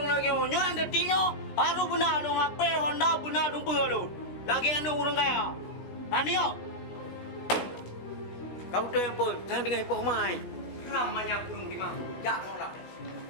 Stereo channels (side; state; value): right; late; 16 ms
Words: lagi orang. Nyo anda tinyo. Haru benar lo HP Honda benar numpa lo. Lagi anda orang kaya. Nanti yo. Kau tu yang pun, jangan dengar hipoh mai. Ramanya kurung di mana? Ya, nolak.